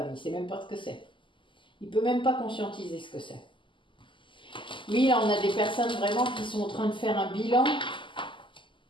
il ne sait même pas ce que c'est. Il ne peut même pas conscientiser ce que c'est. Oui, là, on a des personnes vraiment qui sont en train de faire un bilan,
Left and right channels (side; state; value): right; late; 0.24 ms